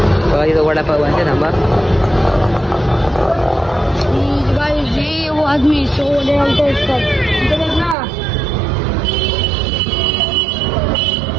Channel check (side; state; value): left; drops out; at 8.0 s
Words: बघा इथं वडापाव आहे, थांबा। आदमी 100 डालते असतात.